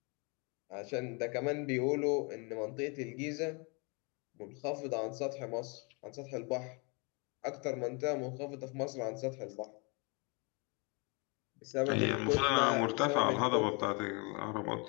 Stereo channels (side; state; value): right; quieter; 31.9 dB